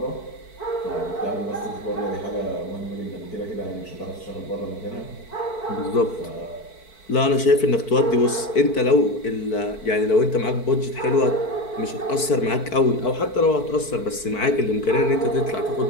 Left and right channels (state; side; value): late; right; 4.5 ms